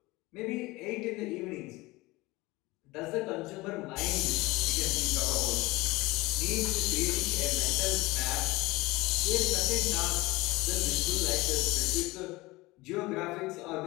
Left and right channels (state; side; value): quieter; right; 21.4 dB